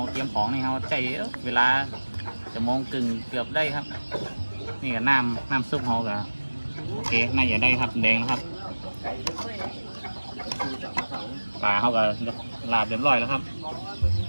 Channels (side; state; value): both; inverted; correlation -1.00